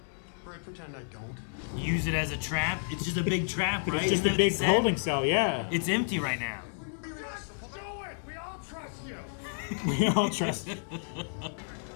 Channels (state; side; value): silent; right; digital silence